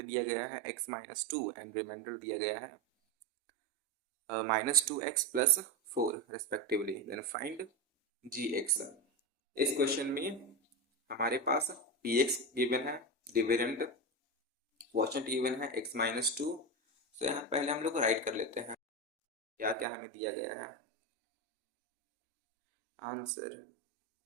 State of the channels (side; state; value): both; normal; correlation 0.15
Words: दिया गया है x माइनस 2 एंड रिमाइंडर दिया गया है minus 2x plus 4 respectively, then find gx। इस question में हमारे पास px गिवन है, डिविडेंड क्वोशिएंट गिवन है x माइनस 2, तो यहाँ पहले हम लोग राइट कर लेते हैं क्या क्या हमें दिया गया है। Answer